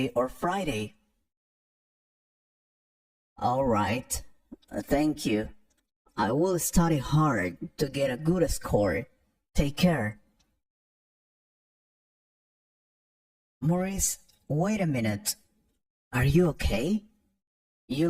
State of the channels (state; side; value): identical; both; correlation 1.00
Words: or Friday. All right. Thank you. I will study hard to get a good score. Take care. Maurice, wait a minute. Are you okay? You